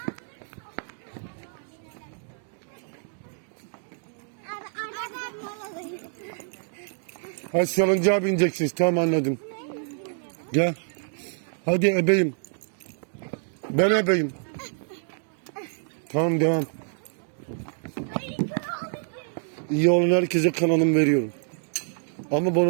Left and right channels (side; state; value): left; silent; 60 dB below the other